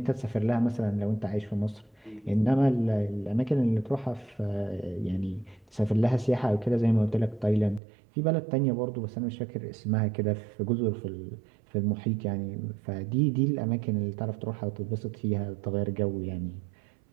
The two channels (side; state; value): left; drops out; at 7.8 s